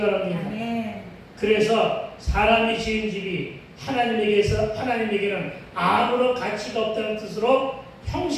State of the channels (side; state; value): both; identical; correlation 1.00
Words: 아멘. 그래서 사람이 지은 집이 하나님에게는 아무런 가치가 없다는 뜻으로